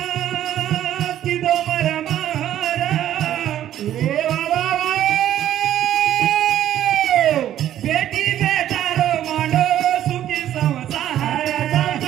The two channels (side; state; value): left; quieter; 11.8 dB